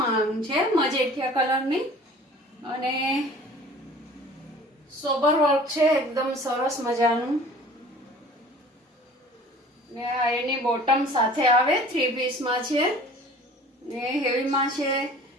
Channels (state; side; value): normal; both; correlation 0.47